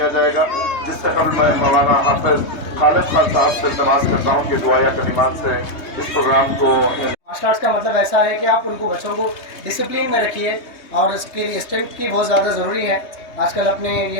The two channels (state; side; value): late; right; 3.2 ms